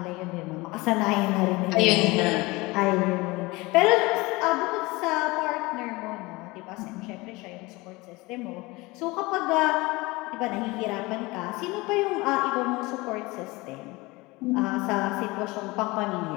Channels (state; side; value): quieter; right; 22.7 dB